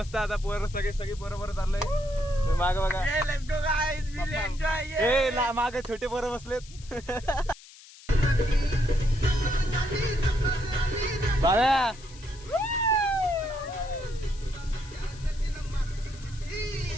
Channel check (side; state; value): left; noise; hiss, 20 dB below the sound